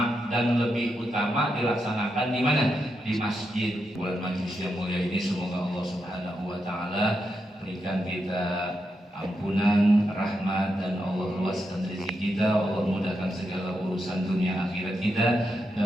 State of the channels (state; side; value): normal; both; correlation 0.84